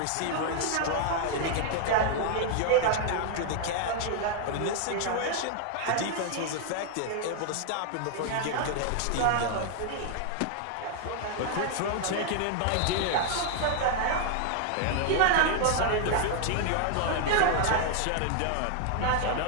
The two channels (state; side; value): different; both; correlation 0.00